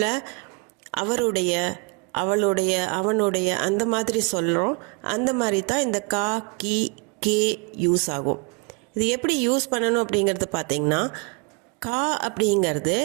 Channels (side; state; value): left; quieter; 32.0 dB